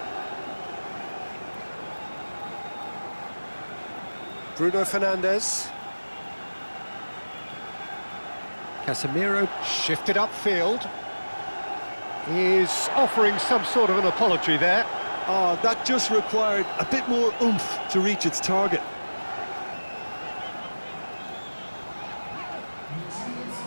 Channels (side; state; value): both; inverted; correlation -1.00